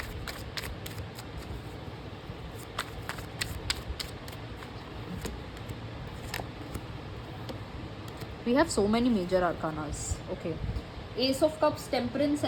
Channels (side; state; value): both; identical; correlation 1.00